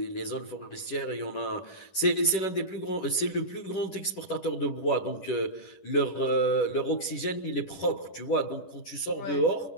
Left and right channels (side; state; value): right; late; 10 ms